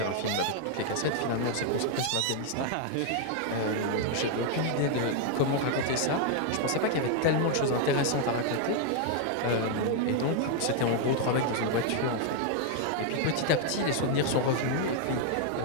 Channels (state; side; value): different; both; correlation 0.00